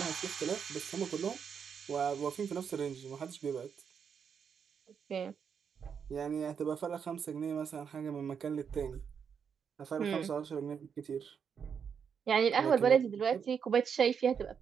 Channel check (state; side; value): quieter; left; 7.0 dB